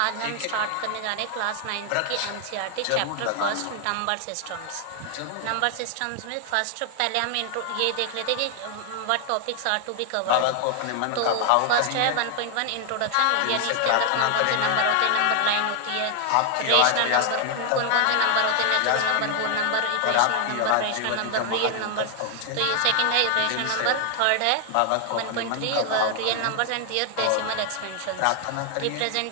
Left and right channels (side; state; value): both; different; correlation 0.00